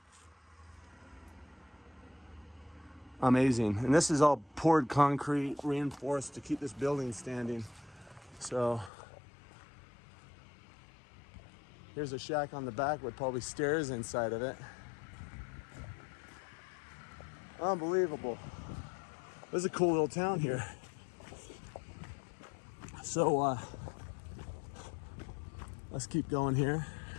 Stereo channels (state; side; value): drops out; right; at 8.9 s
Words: Amazing. And this is all poured concrete, reinforced to keep this building standing. So here's a shack on the back with probably stairs inside of it. Unbelievable. This is a cool little town here. So let's keep going here.